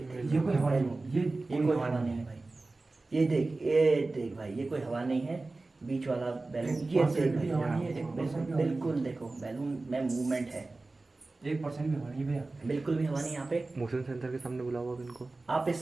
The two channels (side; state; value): left; quieter; 3.3 dB